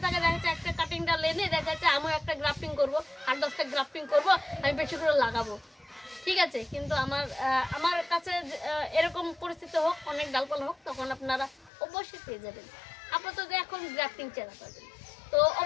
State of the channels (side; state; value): right; drops out; at 11.7 s